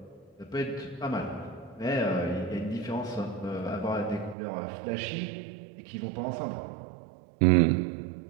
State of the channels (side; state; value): left; drops out; at 4.4 s